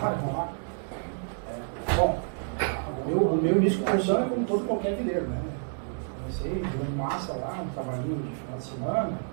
lá. Bom, o meu início de construção é como todo qualquer viveiro, né? Comecei jogando massa lá, no trabalhinho de final de semana,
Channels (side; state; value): left; silent; digital silence